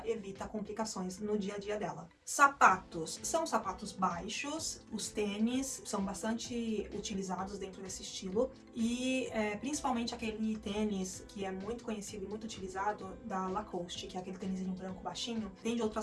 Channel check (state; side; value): identical; both; correlation 1.00